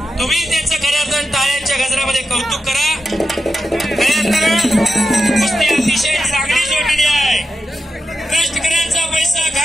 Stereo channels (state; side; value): normal; both; correlation 0.89